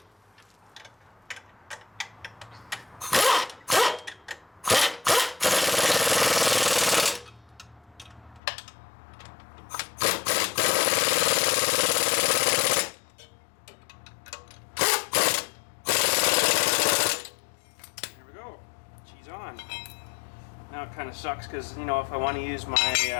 On. Now it kind of sucks because, you know, if I want to use my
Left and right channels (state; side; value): drops out; right; at 8.4 s